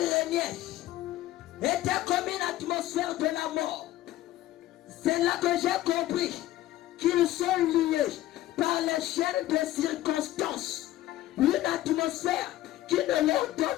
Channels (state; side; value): quieter; right; 14.8 dB